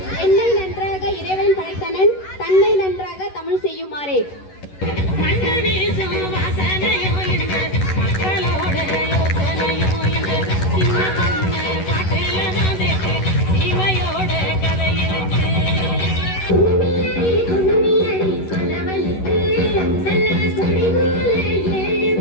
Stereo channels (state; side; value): late; right; 11 ms